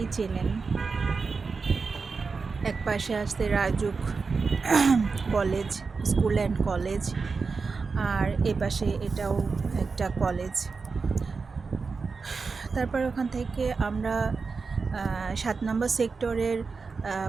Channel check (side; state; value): left; quieter; 4.7 dB